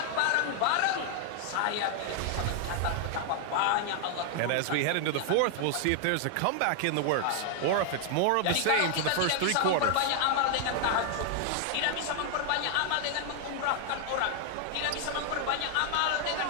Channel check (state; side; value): different; both; correlation 0.00